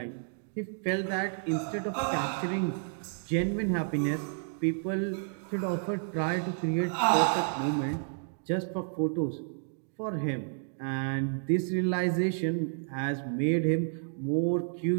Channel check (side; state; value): left; silent; digital silence